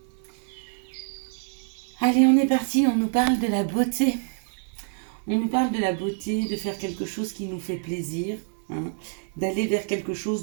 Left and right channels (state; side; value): silent; left; digital silence